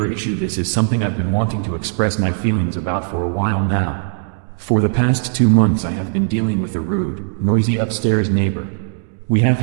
issue. This is something I've been wanting to express my feelings about for a while now. For the past 2 months I have been dealing with a rude, noisy upstairs neighbor. We have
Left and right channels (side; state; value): left; silent; 67 dB below the other